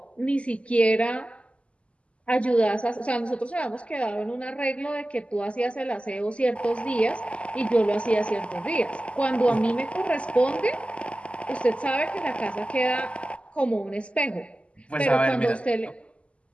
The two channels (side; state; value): right; late; 0.058 ms